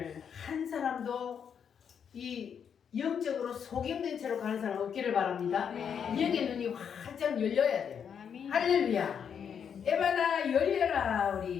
한 사람도 이 영적으로 속임된 채로 가는 사람 없기를 바랍니다. 영의 눈이 활짝 열려야 돼요. 할렐루야. 에바나 열려라.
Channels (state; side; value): quieter; right; 7.6 dB